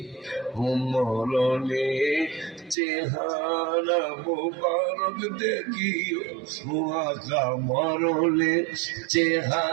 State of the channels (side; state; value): left; drops out; at 2.8 s